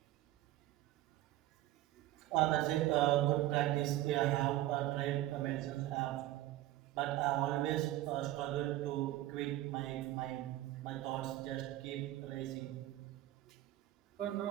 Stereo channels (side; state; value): left; quieter; 15.2 dB